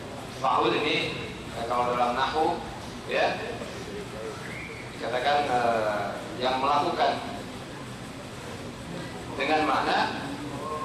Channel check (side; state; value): both; identical; correlation 1.00